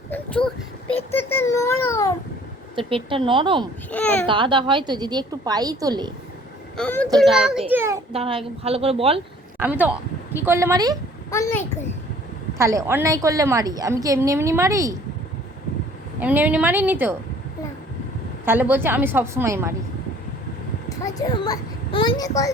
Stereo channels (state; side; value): normal; both; correlation 0.54